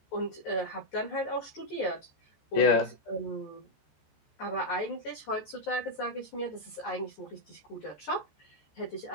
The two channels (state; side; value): late; right; 14 ms